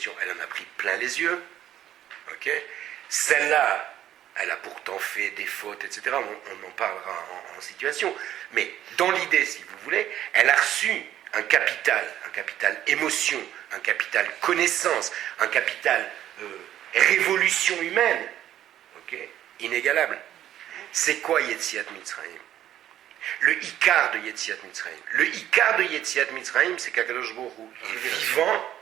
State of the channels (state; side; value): quieter; left; 11.9 dB